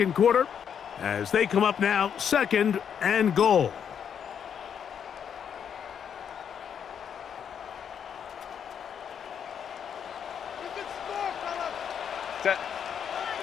quarter as they come up now, second and goal. Set.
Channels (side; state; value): right; quieter; 8.0 dB